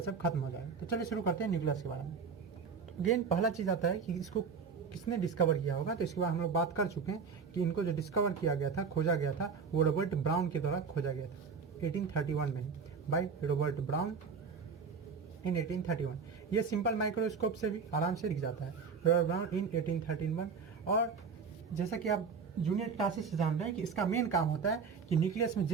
सब खत्म हो जाएगा। तो चलिए शुरू करते हैं न्यूक्लियस के बारे में। तो अगेन पहला चीज़ आता है कि इसको किसने डिस्कवर किया होगा। तो इसके बाद हम लोग बात कर चुके हैं कि इनको जो डिस्कवर किया गया था, खोजा गया था, वो रॉबर्ट ब्राउन के द्वारा खोजा गया था 1831 में, बाय रॉबर्ट ब्राउन इन 1831। ये सिंपल माइक्रोस्कोप से भी आराम से दिख जाता है, रॉबर्ट ब्राउन इन 1831। और जैसा कि आप जूनियर क्लासेस से जान रहे हैं कि इसका मेन काम होता है कि न्यूक्लियस में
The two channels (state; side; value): quieter; left; 5.6 dB